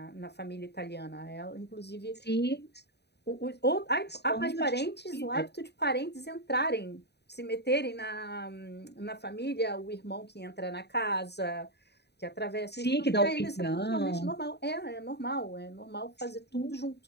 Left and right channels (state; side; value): late; right; 0.49 ms